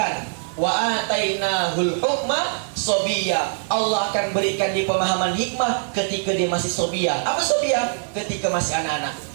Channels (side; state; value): left; silent; 64 dB below the other